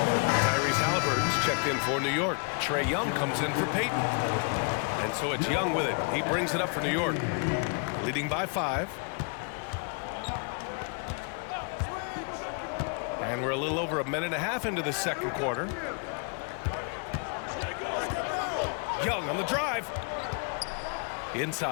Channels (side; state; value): right; quieter; 38.7 dB